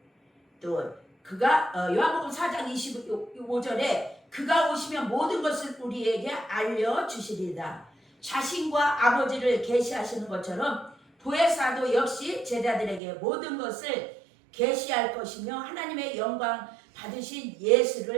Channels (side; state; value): left; drops out; at 13.0 s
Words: 또 그가 요한복음 4장 25절에 그가 오시면 모든 것을 우리에게 알려주시리다. 자신과 아버지를 계시하시는 것처럼 보혜사도 역시 제자들에게 모든 것을 계시할 것이며 하나님의 영광 받으신